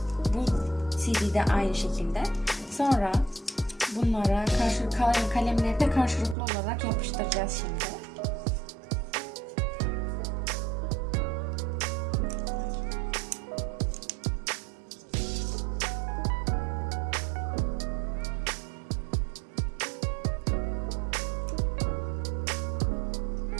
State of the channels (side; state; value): left; drops out; at 6.4 s